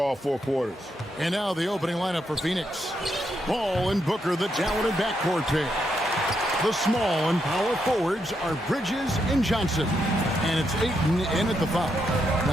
4 quarters. And now the opening lineup for Phoenix. Ball and Booker, the talented backcourt pair. The small and power forwards are Bridges and Johnson. And it's Ayton in at the foul.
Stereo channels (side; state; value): both; normal; correlation 0.80